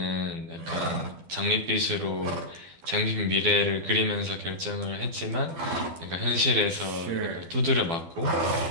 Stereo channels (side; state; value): left; late; 12 ms